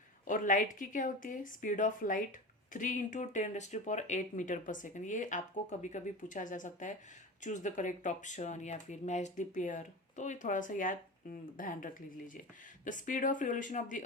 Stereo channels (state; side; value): normal; both; correlation 0.28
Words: और लाइट की क्या होती है, speed of light 3 × 10⁸ metre per second. ये आपको कभी कभी पूछा जा सकता है, चूज द करेक्ट ऑप्शन या फिर मैच द पेयर, तो ये थोड़ा सा याद ध्यान रख लीजिए। The speed of revolution of the